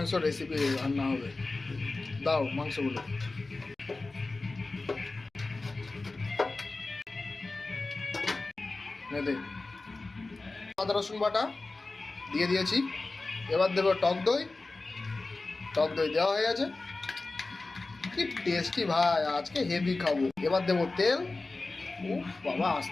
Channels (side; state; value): right; quieter; 3.4 dB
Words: রেসিপি রান্না হবে। দাও মাংসগুলো। দে আদা রসুন বাটা দিয়ে দিয়েছি। এবার দেবো টক দই। টক দই দেওয়া হয়ে গেছে। কি টেস্টি ভাই, আজকে হেভি খাবো। এবার দেবো তেল। উফ বাবা,